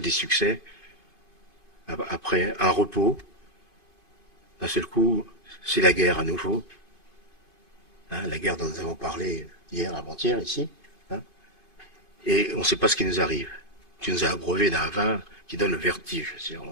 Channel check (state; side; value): late; right; 2.5 ms